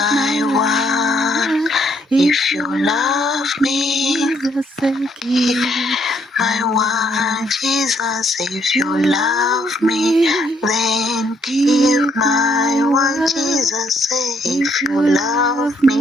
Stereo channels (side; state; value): both; normal; correlation 0.70